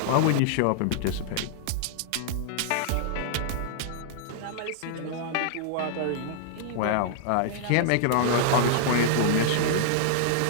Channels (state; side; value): different; both; correlation -0.01